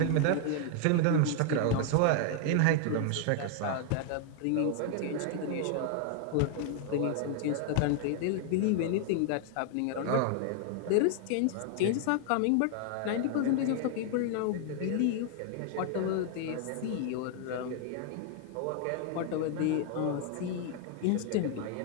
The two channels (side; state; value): both; different; correlation 0.00